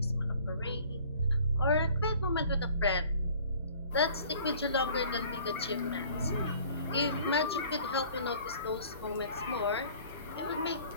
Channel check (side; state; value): both; inverted; correlation -0.51